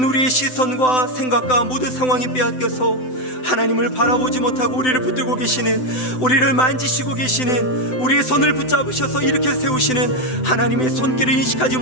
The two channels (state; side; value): late; right; 7.9 ms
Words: 우리의 시선과 생각과 모든 상황이 빼앗겨서 하나님을 바라보지 못하고 우리를 붙들고 계시는, 우리를 만지시고 계시는, 우리의 손을 붙잡으셔서 일으켜 세우시는 하나님의 손길을 인식하지